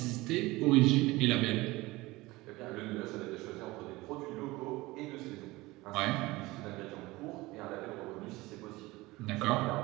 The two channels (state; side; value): quieter; left; 20.6 dB